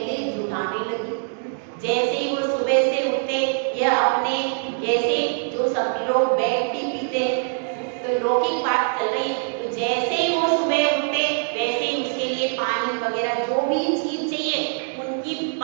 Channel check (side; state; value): left; silent; 63 dB below the other